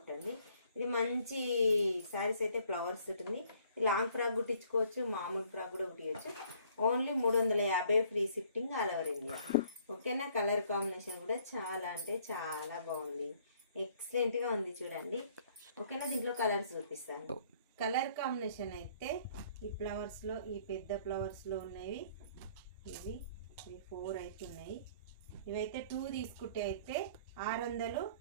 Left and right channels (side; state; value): both; inverted; correlation -0.60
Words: అండి. ఇది మంచి శారీస్ అయితే ఫ్లవర్స్ ఉంటుంది. లాంగ్ ఫ్రాక్ కుట్టించుకోవచ్చు, మామూలు ఫ్రాక్ కూడా కుట్టించవచ్చు. Only 350 free shifting all over India. ఓకేనా. కలర్ కాంబినేషన్ కూడా చాలా అంటే చాలా బాగుంది, ఎక్సలెంట్గా ఉంది. చూడండి ఓకేనా. దీంట్లో కలర్స్ చూపిస్తాను. కలర్ కాంబినేషన్ అయితే ఈ ఫ్లవర్స్లో, ఈ పెద్ద ఫ్లవర్స్లో ఉన్నవి ఇవి 4 అయితే ఉన్నాయి. ఇవైతే 2 తీసుకుంటే అయితే 600,